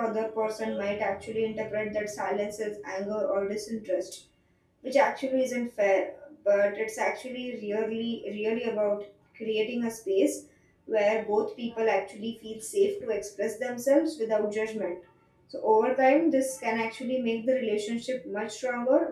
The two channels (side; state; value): both; identical; correlation 1.00